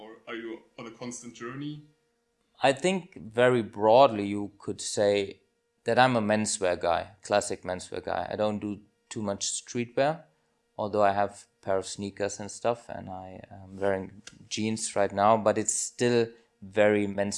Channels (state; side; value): identical; both; correlation 1.00